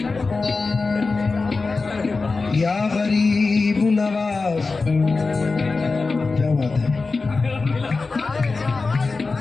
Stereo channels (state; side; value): quieter; right; 4.0 dB